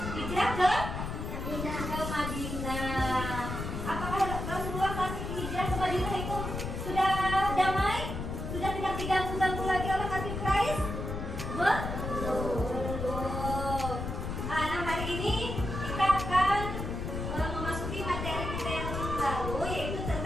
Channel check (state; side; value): noise; left; rumble, 5 dB below the sound